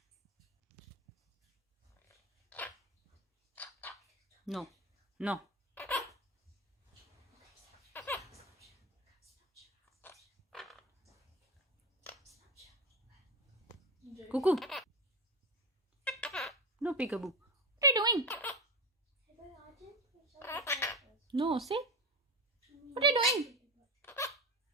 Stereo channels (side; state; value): both; normal; correlation 0.20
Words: No. No. Cuckoo. No, peekaboo. What are you doing? No, see? What are you doing?